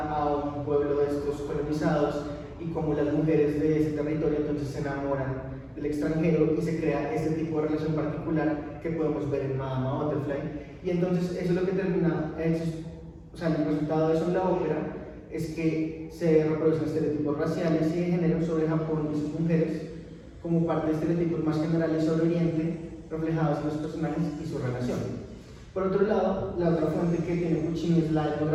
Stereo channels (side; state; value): both; identical; correlation 1.00